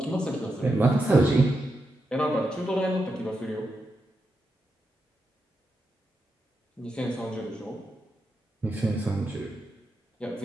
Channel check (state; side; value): normal; both; correlation 0.86